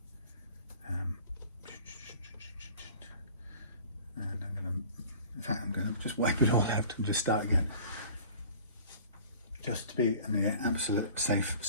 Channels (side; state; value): both; inverted; correlation -0.46